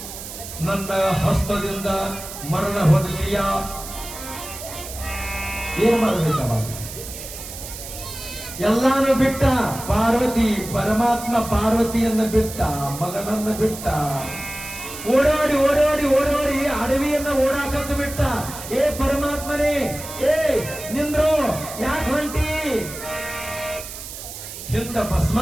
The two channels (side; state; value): right; noise; hiss, 11 dB below the sound